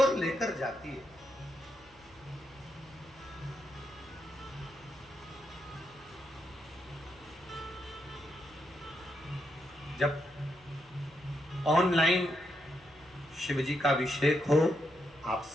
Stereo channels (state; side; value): noise; right; hum, 26 dB below the sound